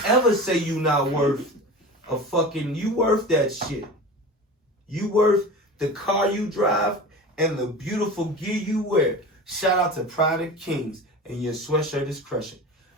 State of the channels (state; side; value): normal; both; correlation 0.33